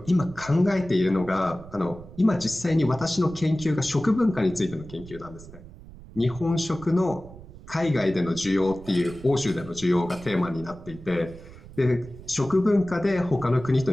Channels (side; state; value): right; noise; rumble, 17 dB below the sound